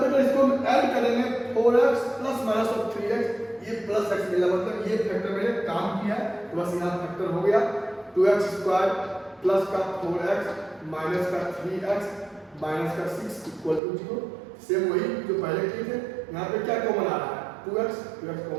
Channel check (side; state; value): left; drops out; at 13.8 s